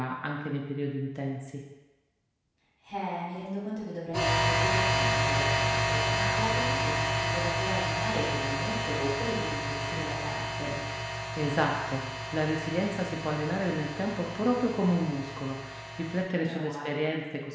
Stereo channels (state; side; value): identical; both; correlation 1.00